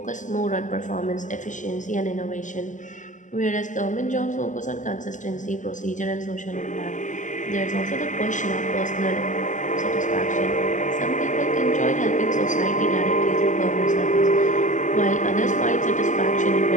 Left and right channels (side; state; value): right; late; 0.37 ms